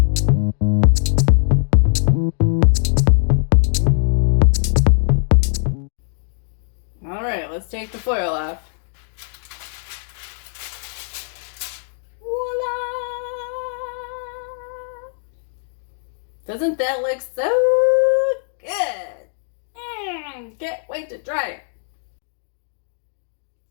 All right, let's take the foil off. Voila! Doesn't that look so good? Can't wait to try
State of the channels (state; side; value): silent; right; digital silence